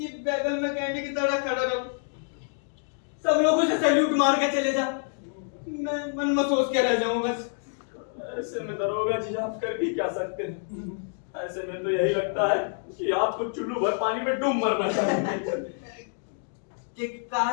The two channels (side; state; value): right; silent; 60 dB below the other